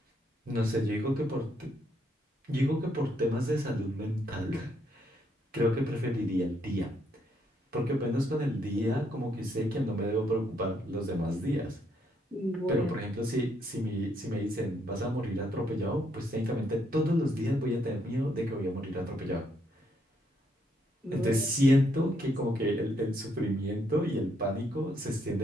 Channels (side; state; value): both; normal; correlation 0.74